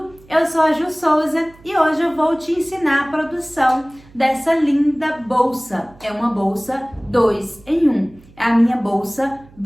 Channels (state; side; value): noise; right; hum, 25 dB below the sound